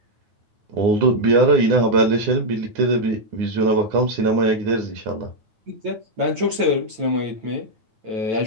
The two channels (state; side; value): late; left; 9.1 ms